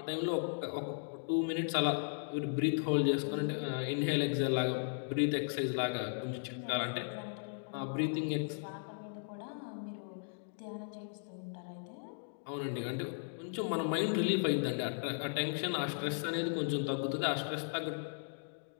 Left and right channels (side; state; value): right; silent; digital silence